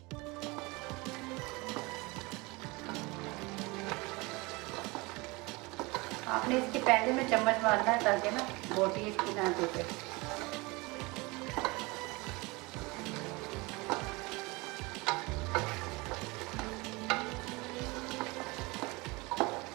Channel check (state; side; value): quieter; left; 24.8 dB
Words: आपने इसके पहले में चम्मच मारना है ताकि ना बोटी इसकी ना टूटे।